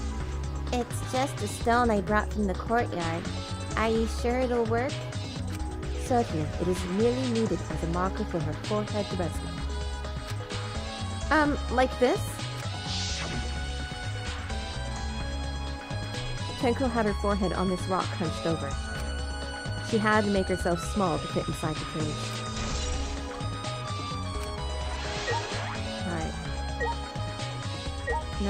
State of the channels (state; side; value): identical; both; correlation 1.00